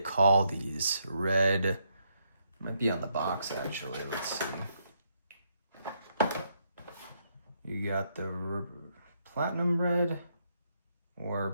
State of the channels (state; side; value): inverted; both; correlation -0.75